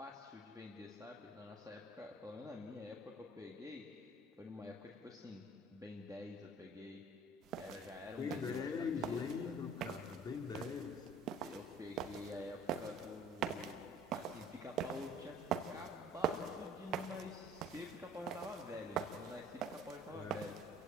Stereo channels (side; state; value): both; normal; correlation 0.51